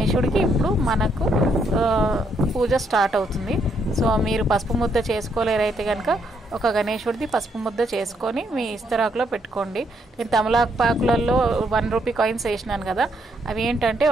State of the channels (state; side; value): normal; both; correlation 0.74